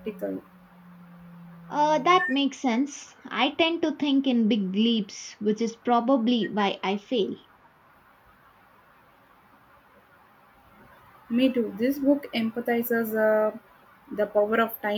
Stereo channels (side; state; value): both; identical; correlation 1.00